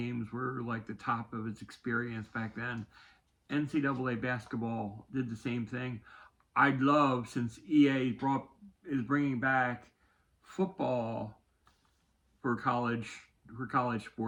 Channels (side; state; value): both; identical; correlation 1.00